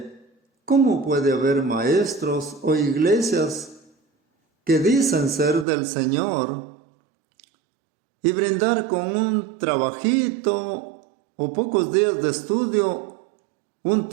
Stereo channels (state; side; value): drops out; left; at 5.7 s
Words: ¿cómo puede haber maestros o iglesias que dicen ser del Señor y brindar con un trabajito o pocos días de estudio un